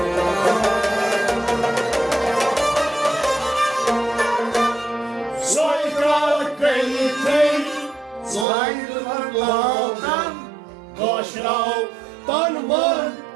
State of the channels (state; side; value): drops out; left; at 8.5 s